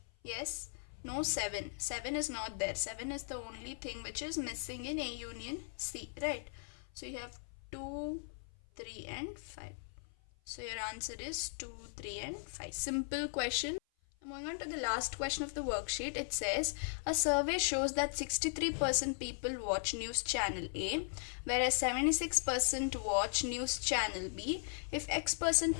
yes, No 7. 7 is not there. 7 is the only thing which is missing in A union C, right? So you have 2, 3 and 5. So your answer is 2, 3 and 5. Simple question. Moving on to the last question of the worksheet, it says a survey shows that 63% people watch news channel A, whereas 76% watch news channel B. If X%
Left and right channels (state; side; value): silent; right; 52 dB below the other